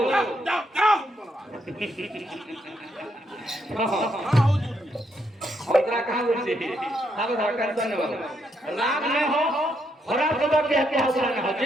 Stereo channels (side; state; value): both; normal; correlation 0.77